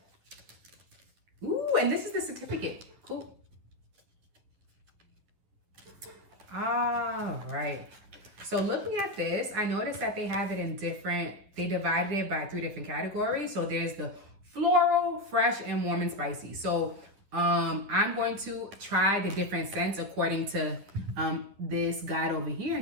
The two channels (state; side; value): late; left; 10 ms